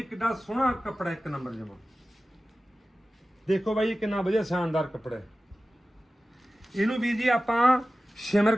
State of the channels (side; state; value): both; normal; correlation 0.95